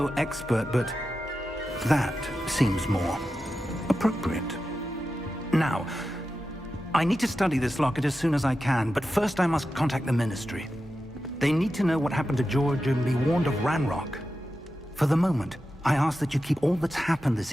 expert, but that seems more appropriate. Now, I need to study this locket as soon as I can, but first I must contact the Ministry. They need to know what happened to George and be warned of Ranrock. For the moment, I ask that you keep all that's happened this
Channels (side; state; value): both; normal; correlation 0.91